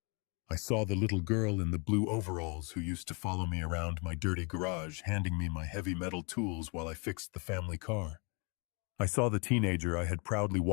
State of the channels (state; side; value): quieter; right; 33.2 dB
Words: I saw the little girl in the blue overalls who used to follow me around my dirty garage, handing me my heavy metal tools while I fixed the family car. I saw the teenager I had proudly